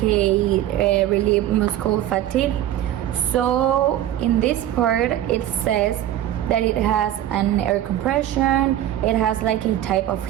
a relief muscle fatigue. So in this part it says that it has an air compression, it has like a type of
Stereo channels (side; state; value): left; quieter; 12.4 dB